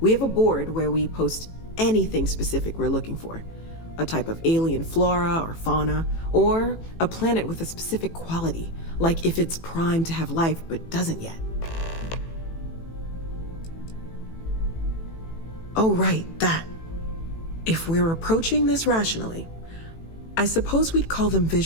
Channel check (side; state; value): right; late; 18 ms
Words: have a board where we post anything specific we're looking for. A type of alien flora or fauna, or a planet with a specific quality, like if it's primed to have life but doesn't yet. Oh, right, that. If we're approaching this rationally, I suppose we'd call them